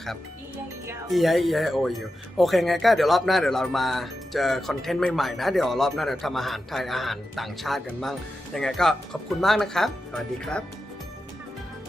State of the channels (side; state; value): both; normal; correlation 0.90